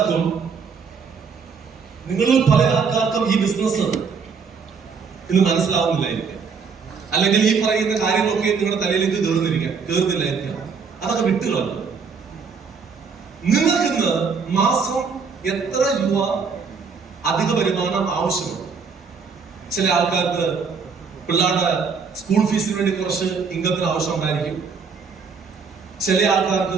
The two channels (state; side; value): quieter; left; 5.6 dB